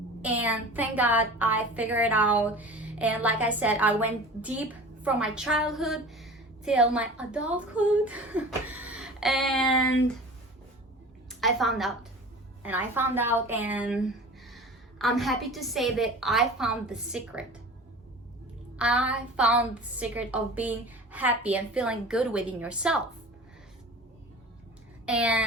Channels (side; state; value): both; normal; correlation 0.38